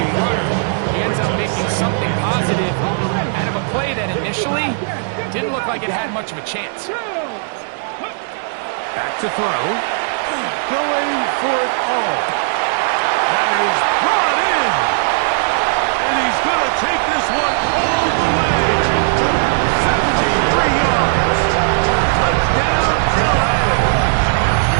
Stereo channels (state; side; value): silent; left; digital silence